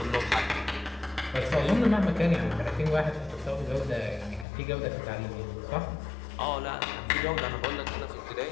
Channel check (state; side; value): drops out; right; at 4.5 s